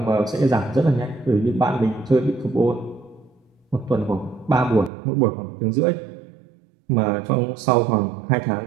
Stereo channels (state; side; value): drops out; left; at 4.9 s